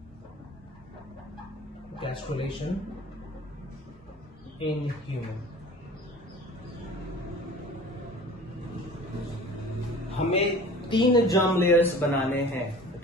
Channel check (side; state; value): both; normal; correlation 0.43